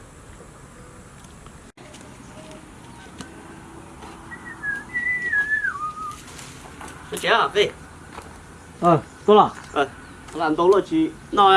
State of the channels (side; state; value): both; identical; correlation 1.00